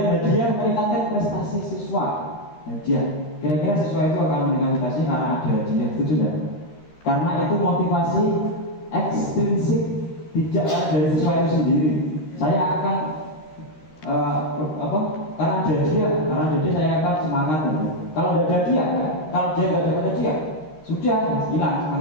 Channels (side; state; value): right; late; 13 ms